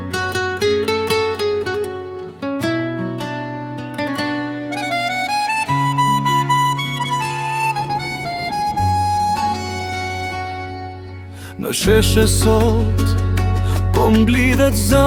sheshe sot, po mblidhet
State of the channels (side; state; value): both; identical; correlation 1.00